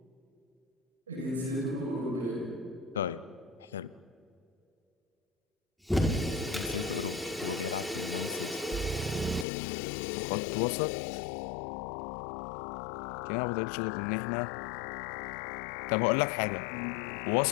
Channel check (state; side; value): drops out; right; at 9.5 s